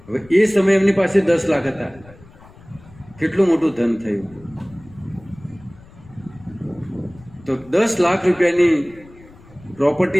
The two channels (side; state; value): left; noise; rumble, 23 dB below the sound